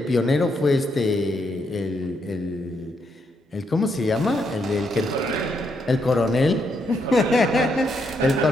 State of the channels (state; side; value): normal; both; correlation 0.78